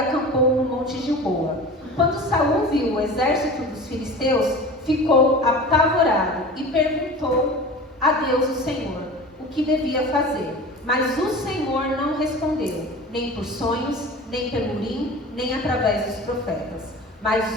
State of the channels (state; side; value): normal; both; correlation 0.36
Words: no monte Gilboa. Quando Saul viu o exército dos filisteus, ficou apavorado e perguntou a Deus, o Senhor, o que devia fazer. Mas o Senhor não respondeu, nem por sonhos, nem pelo Urim, nem através dos profetas.